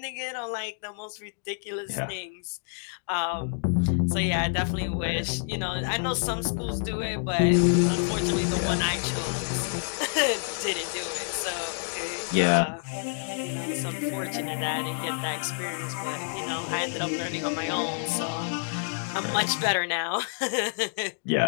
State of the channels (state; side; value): silent; right; digital silence